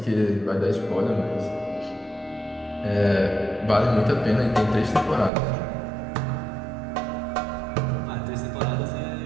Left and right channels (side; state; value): left; drops out; at 5.3 s